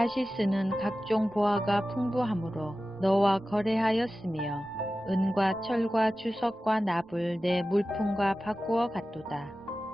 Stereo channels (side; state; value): both; normal; correlation 0.95